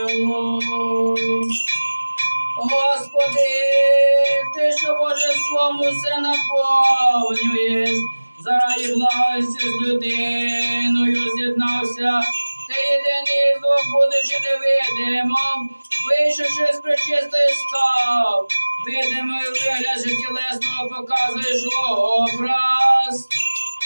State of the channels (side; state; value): both; inverted; correlation -1.00